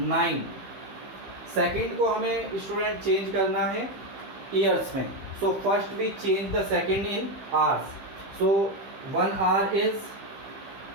Second को हमें student change करना है years में. So first we change the second in hours. So 1 hour is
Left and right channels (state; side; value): late; left; 15 ms